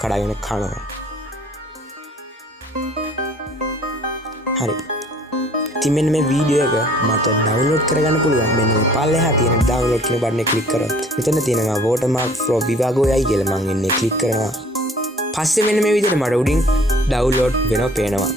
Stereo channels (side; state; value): both; normal; correlation 0.54